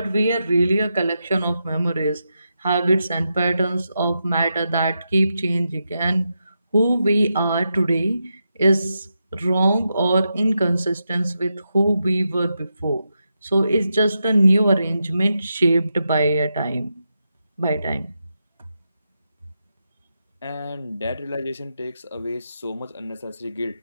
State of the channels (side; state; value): both; inverted; correlation -0.86